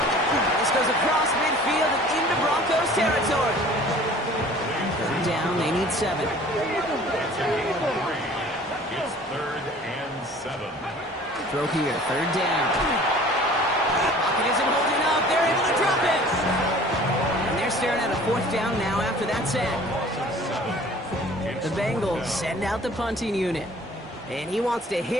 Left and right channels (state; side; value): normal; both; correlation 0.48